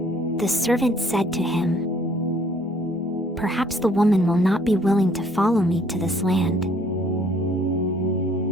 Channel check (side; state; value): both; normal; correlation 0.61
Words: The servant said to him, "Perhaps the woman will not be willing to follow me to this land.